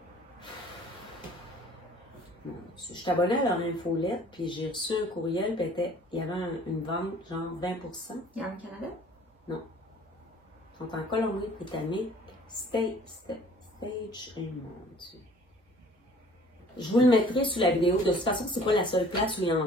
je suis abonnée à leur infolette, puis j'ai reçu un courriel, puis il y avait une vente, genre 20%. Yarn Canada? Non. Ils sont en Colombie-Britannique. Stage. Mon Dieu. Je vous le mettrai sous la vidéo. De toute façon, c'est pas la seule place où ils en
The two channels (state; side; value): normal; both; correlation 0.52